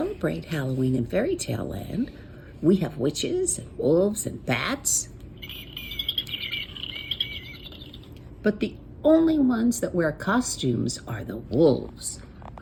Halloween in Fairy Tale Land. We have witches and wolves and bats. But the only ones that wear costumes are the wolves,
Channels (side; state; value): both; identical; correlation 1.00